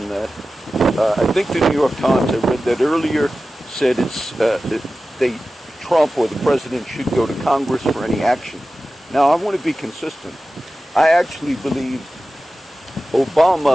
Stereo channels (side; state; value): both; normal; correlation 0.95